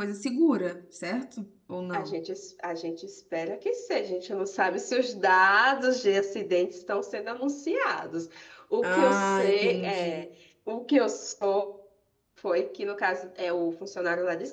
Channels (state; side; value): identical; both; correlation 1.00